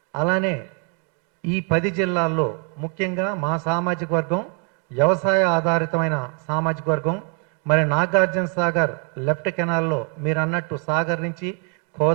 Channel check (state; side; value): quieter; left; 39.3 dB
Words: అలానే ఈ 10 జిల్లాల్లో ముఖ్యంగా మా సామాజిక వర్గం వ్యవసాయ ఆధారితమైన సామాజిక వర్గం. మరి నాగార్జున సాగర్ లెఫ్ట్ కెనాల్లో మీరు అన్నట్టు సాగర్ నుంచి